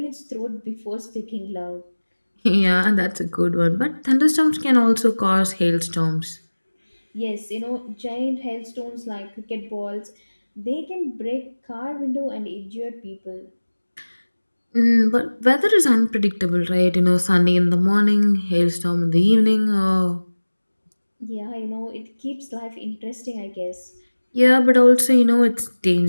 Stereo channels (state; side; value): inverted; both; correlation -1.00